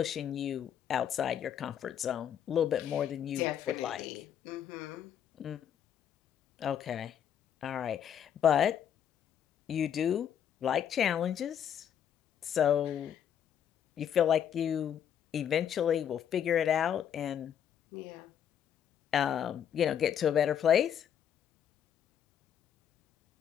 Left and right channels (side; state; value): right; quieter; 9.2 dB